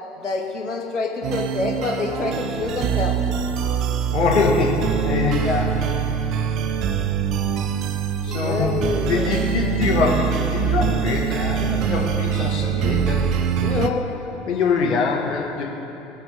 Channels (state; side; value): normal; both; correlation 0.37